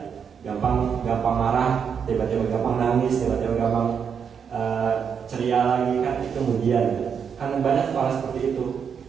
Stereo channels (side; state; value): left; quieter; 7.0 dB